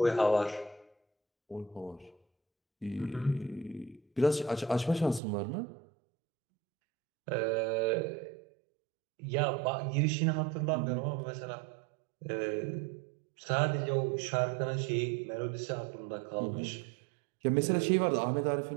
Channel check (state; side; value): drops out; left; at 5.2 s